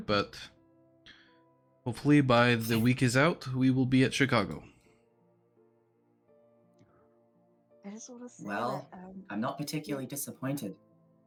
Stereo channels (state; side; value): identical; both; correlation 1.00